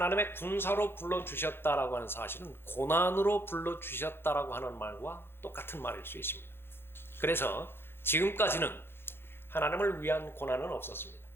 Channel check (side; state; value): right; late; 0.11 ms